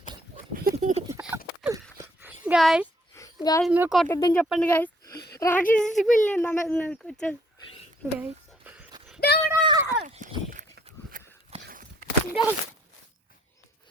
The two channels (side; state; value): both; normal; correlation 0.65